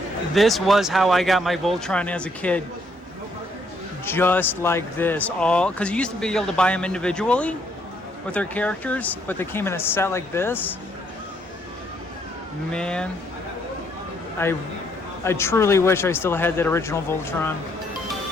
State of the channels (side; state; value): both; normal; correlation 0.70